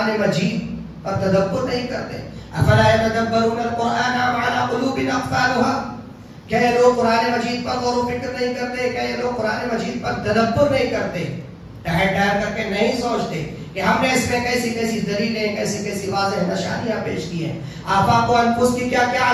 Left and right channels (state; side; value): identical; both; correlation 1.00